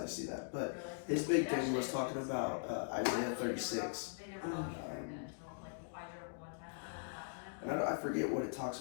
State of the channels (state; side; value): silent; right; digital silence